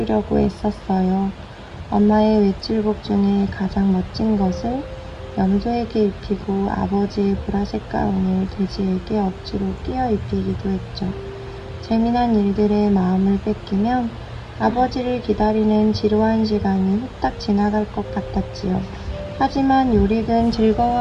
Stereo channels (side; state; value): both; identical; correlation 1.00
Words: 애썼어요. 엄마의 외출복 중에 가장 멋진 것을 염소에게 입히고 아버지의 보라색 가운을 돼지에게 억지로 끼워 입히기도 했죠. 재미난 일들에 마음을 뺏기면 아버지를 기다리는 지루한 시간이 후딱 지나갈 것 같았지요. 하지만 요릭은